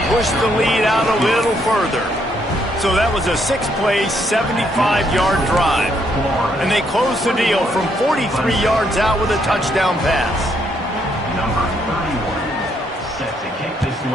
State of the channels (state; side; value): normal; both; correlation 0.73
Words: push the lead out a little further. So that was a 6-play, 75-yard drive. And they closed the deal from 43 yards out with a touchdown pass. Number 31, set to kick this